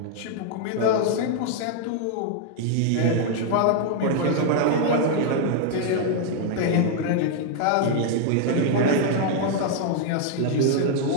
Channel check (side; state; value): both; different; correlation 0.00